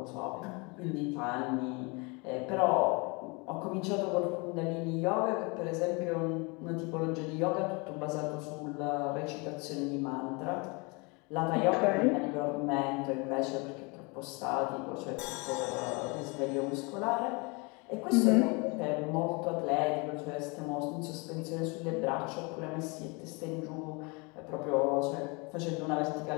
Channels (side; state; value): right; quieter; 29.4 dB